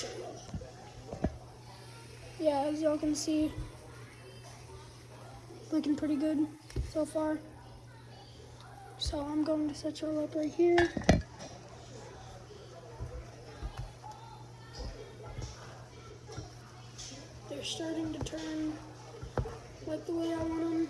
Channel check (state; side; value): identical; both; correlation 1.00